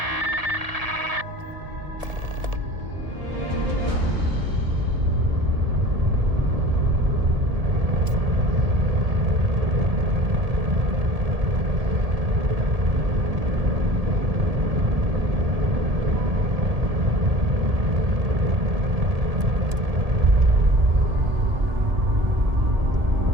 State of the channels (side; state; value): left; late; 1.7 ms